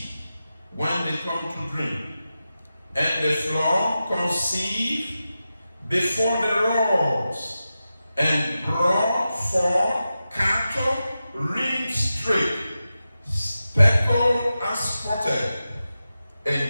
when they come to drink. And the flock conceived before the rods, and brought forth cattle ring straight, speckled and spotted.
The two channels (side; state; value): both; inverted; correlation -0.92